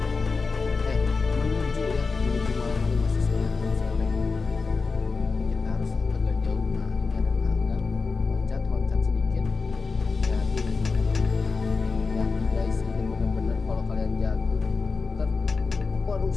Menuju malam hari, masih 9 sore. Kita harus agak jauh. Nah, ini ada tangga. Loncat sedikit. Hati-hati guys, ini benar-benar kalau kalian jatuh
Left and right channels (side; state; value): right; quieter; 4.4 dB